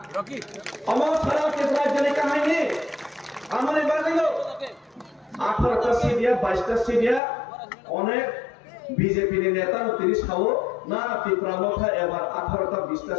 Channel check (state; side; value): drops out; right; at 7.2 s